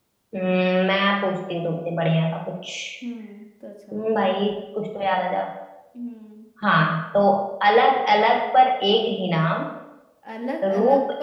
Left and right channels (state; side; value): identical; both; correlation 1.00